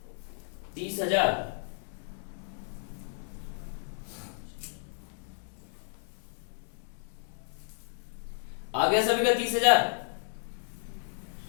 30,000। आ गया सभी का 30,000?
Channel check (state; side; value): silent; right; digital silence